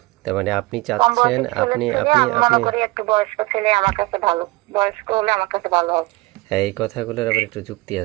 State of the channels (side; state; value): left; quieter; 22.1 dB